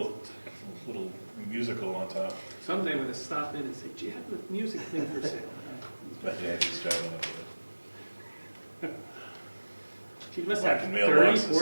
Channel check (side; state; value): both; inverted; correlation -1.00